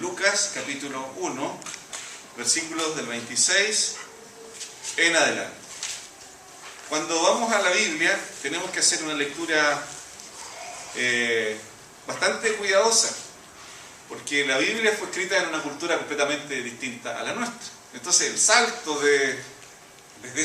capítulo 1, versículos del 26 en adelante. Cuando vamos a la Biblia tenemos que hacer una lectura bastante cuidadosa, porque la Biblia fue escrita en una cultura completamente distinta a la nuestra. Entonces el salto desde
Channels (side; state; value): both; identical; correlation 1.00